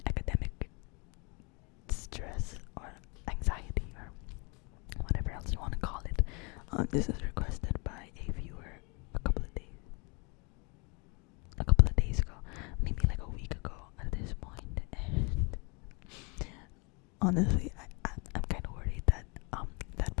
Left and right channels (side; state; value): right; quieter; 31.2 dB